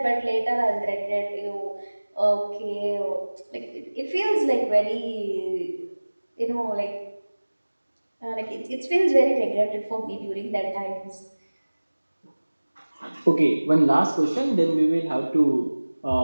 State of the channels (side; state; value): both; inverted; correlation -1.00